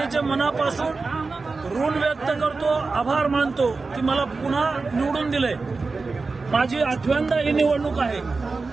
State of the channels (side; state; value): left; quieter; 4.0 dB